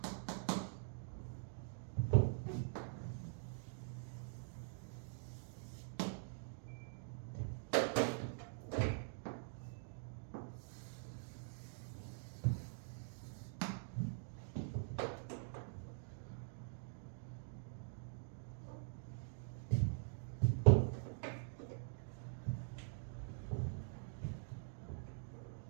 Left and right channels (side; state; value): left; silent; digital silence